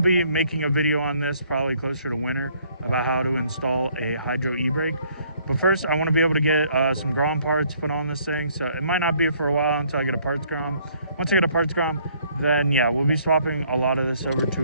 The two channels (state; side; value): inverted; both; correlation -0.63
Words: making a video on this probably closer to winter about how to install a hydro e-brake. But first, I want to be able to get some Grom parts put on this thing, so it might not be for a while until I get a parts Grom. Once I get a parts Grom, then yeah, we'll be swapping a lot of this over